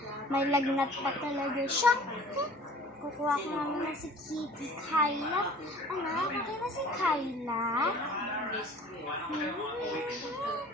May lagnat pa talaga siya. Kukuha ko namin na si Kitty Kyla. Anak, okay na si Kyla?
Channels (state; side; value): normal; both; correlation 0.47